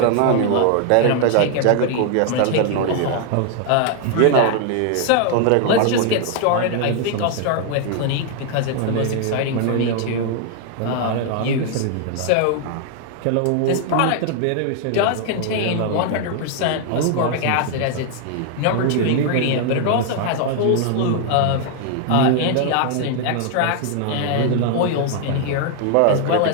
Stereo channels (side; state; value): both; different; correlation 0.00